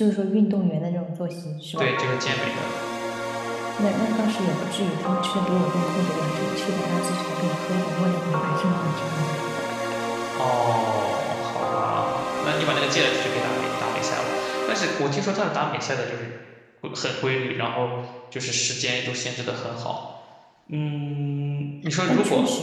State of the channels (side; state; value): both; identical; correlation 1.00